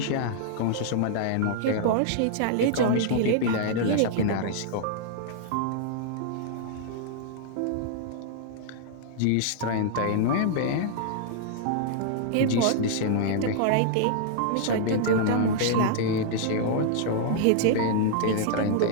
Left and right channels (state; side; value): different; both; correlation -0.01